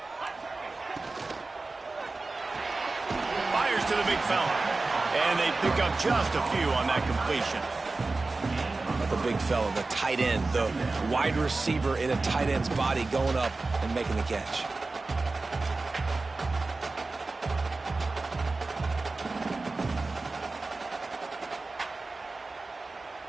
Fires to the big fella. And they pick up just a few on that completion. The big fella, the tight end, the wide receiver in a tight end's body going up and making the catch.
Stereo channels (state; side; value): quieter; left; 3.5 dB